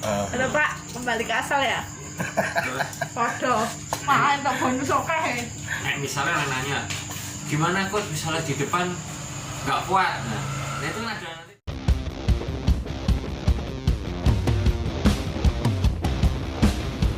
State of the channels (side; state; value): both; identical; correlation 1.00